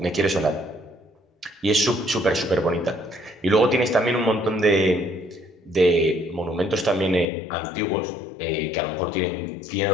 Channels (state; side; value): drops out; right; at 7.3 s